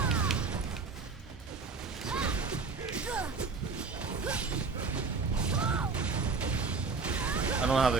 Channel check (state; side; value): quieter; left; 4.5 dB